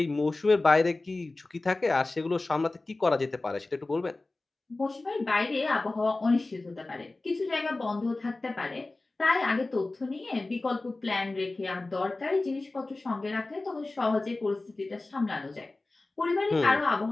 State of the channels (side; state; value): right; quieter; 3.1 dB